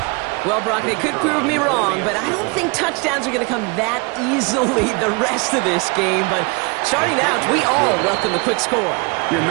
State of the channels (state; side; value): quieter; left; 29.6 dB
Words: Well, Brock, they could prove me wrong, but I don't think touchdowns are going to come that easily the rest of this game. But starting out, we all welcome the quick score. Yeah,